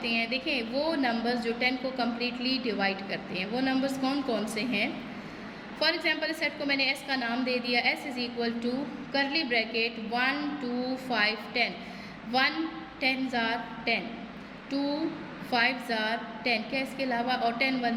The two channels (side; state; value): both; identical; correlation 1.00